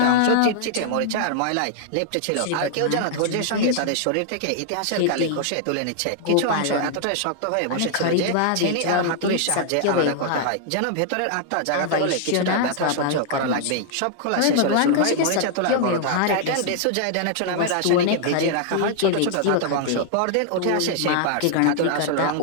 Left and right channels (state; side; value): different; both; correlation -0.01